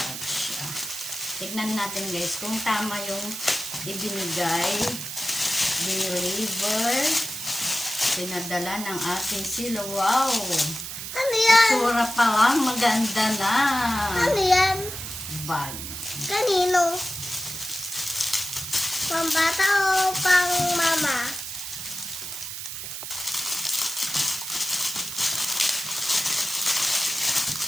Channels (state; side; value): noise; right; hiss, 7 dB below the sound